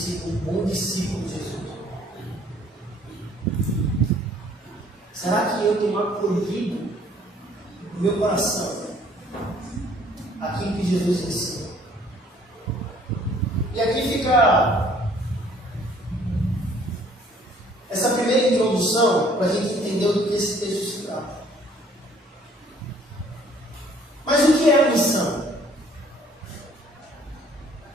um bom discípulo de Jesus? Será que eu tenho acolhido no meu coração aquilo que Jesus ensina? E aqui fica essa primeira introdução para a gente entender do que esse texto se trata. Mas o que é a missão?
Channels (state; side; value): normal; both; correlation 0.59